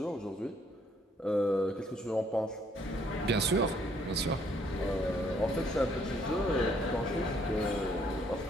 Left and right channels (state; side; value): normal; both; correlation 0.66